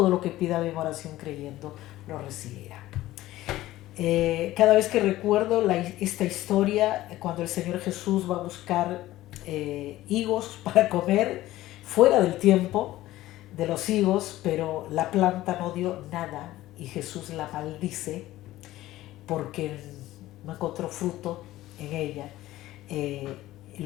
lo que pidan en oración creyendo, lo recibirá. Cada vez que recuerdo esta historia, cuando el Señor Jesús va a buscar higos para comer, fuera del tiempo de los higos, pero la planta no dio nada, y Jesús la maldice, porque no encontró fruto en ella.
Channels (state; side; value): quieter; right; 15.9 dB